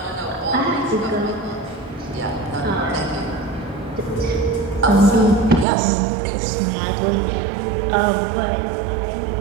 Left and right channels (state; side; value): drops out; left; at 5.7 s